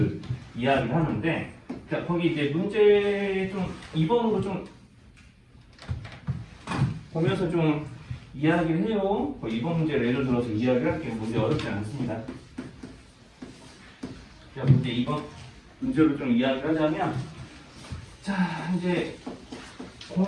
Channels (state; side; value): identical; both; correlation 1.00